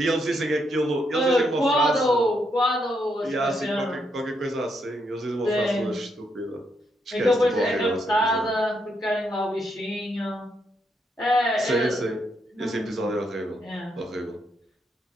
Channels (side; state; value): both; normal; correlation 0.78